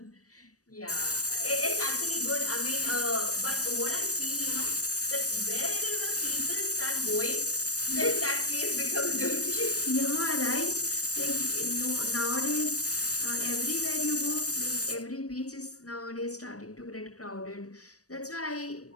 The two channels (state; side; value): late; right; 0.66 ms